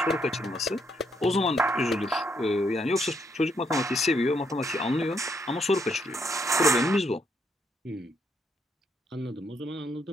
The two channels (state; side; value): normal; both; correlation 0.74